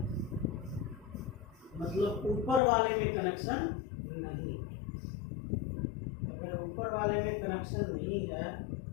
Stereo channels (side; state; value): right; drops out; at 2.6 s